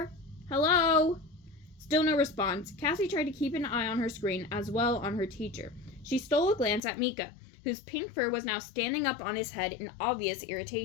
Hello?" Still no response. Cassie tried to keep an eye on her screen as well on her teacher. She stole a glance at Mika, whose pink fur was now standing up on his head in obvious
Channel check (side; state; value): right; drops out; at 6.8 s